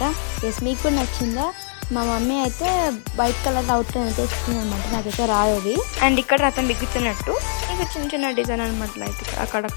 ఎస్ మీకు నచ్చిందా? మా మమ్మీ అయితే వైట్ కలర్ అవుట్లైన్ అయితే ఇస్తుంది అనమాట. నాకైతే రాదు అది. అండ్ ఇక్కడ రథం బిగుతున్నట్టు ఇంకా చిన్న చిన్న డిజైన్ అనమాట. లైక్ అక్కడ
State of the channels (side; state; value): right; silent; digital silence